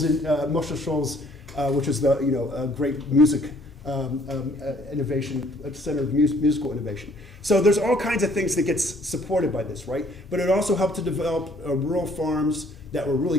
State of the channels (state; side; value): normal; both; correlation 0.61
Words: which is a great music innovation, center of musical innovation. So there's all kinds of things that gets supported by this, right? But it also helped to develop rural farms that were really